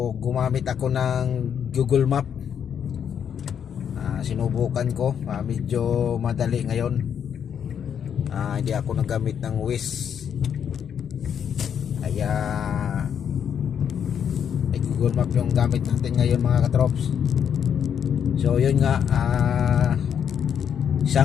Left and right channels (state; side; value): quieter; right; 8.2 dB